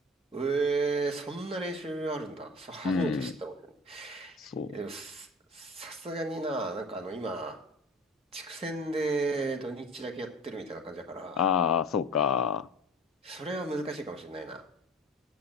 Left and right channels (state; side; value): normal; both; correlation 0.38